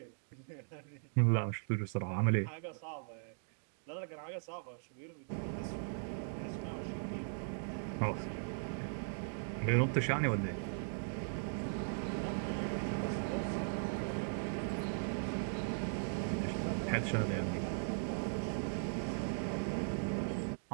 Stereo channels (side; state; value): left; silent; digital silence